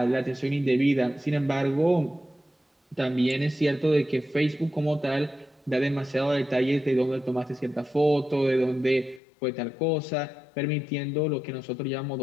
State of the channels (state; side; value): drops out; right; at 9.2 s